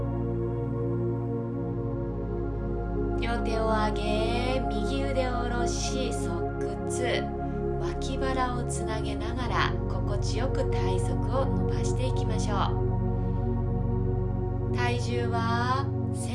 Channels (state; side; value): identical; both; correlation 1.00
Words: 両手を上げ、右腕を下ろし側屈、脇腹をつなげながら心地よく体側を伸ばしていきましょう。体重は